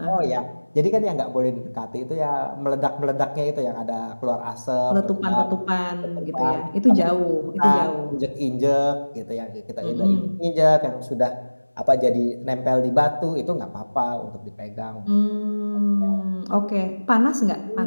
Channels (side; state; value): both; inverted; correlation -1.00